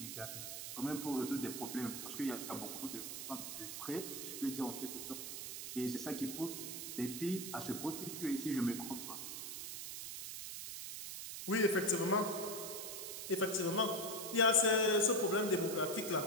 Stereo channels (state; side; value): noise; right; hiss, 6 dB below the sound